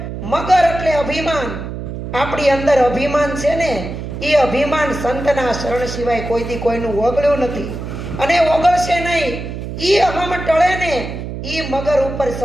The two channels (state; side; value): noise; right; hum, 7 dB below the sound